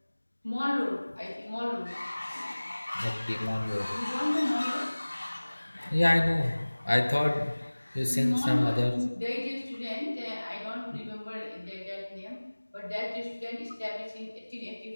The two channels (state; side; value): inverted; both; correlation -1.00